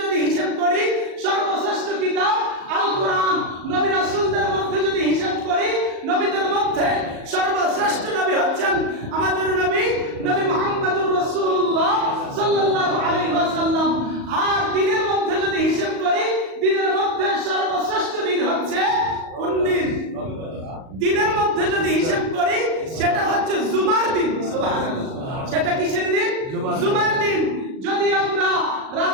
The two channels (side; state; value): left; late; 37 ms